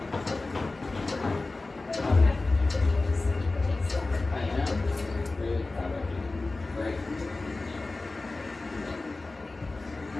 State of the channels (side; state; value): right; quieter; 3.3 dB